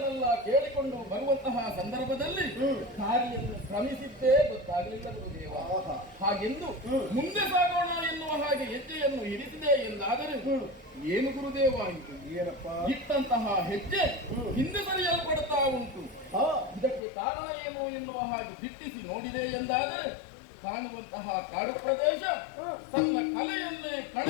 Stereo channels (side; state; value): right; drops out; at 17.0 s